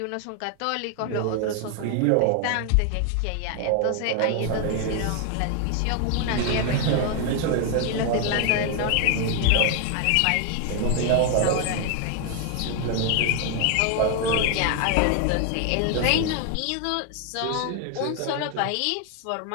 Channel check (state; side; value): different; both; correlation 0.00